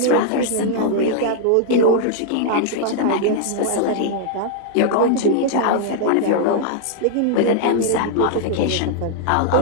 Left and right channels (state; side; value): different; both; correlation -0.01